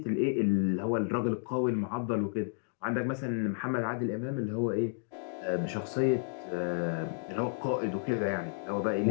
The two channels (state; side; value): silent; right; digital silence